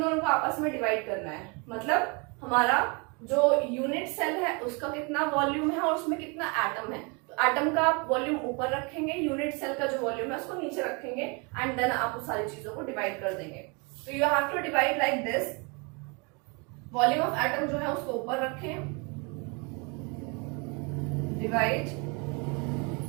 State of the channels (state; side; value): quieter; left; 31.8 dB